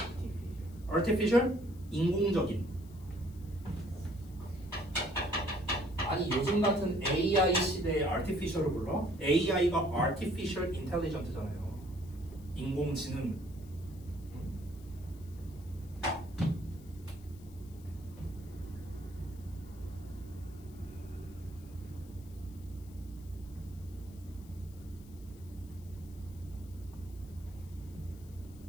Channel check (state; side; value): noise; left; hiss, 25 dB below the sound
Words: artificial? 인공적인. 아니 요즘 같은 AI 시대에 artificial을 불러? AI가 artificial intelligence잖아요. 인공지능.